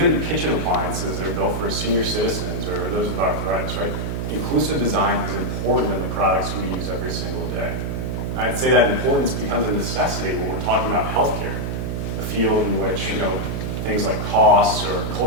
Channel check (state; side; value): noise; right; hum, 2 dB below the sound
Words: kitchen appliances that are built for senior citizens or those with arthritis, right? Inclusive design is important in the products we use every single day. I'd say that importance becomes a necessity when we're talking about healthcare, a field in which, you know, things like costs or